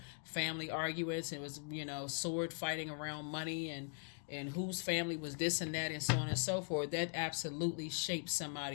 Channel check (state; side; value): silent; right; 51 dB below the other